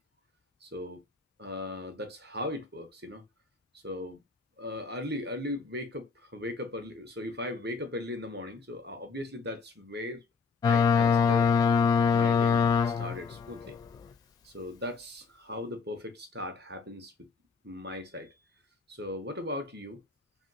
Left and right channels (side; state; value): right; quieter; 5.2 dB